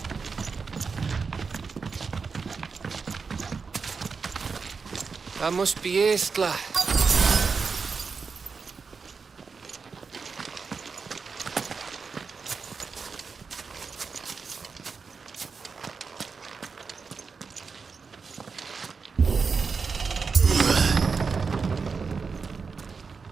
That must be Estla.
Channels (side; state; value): left; quieter; 5.1 dB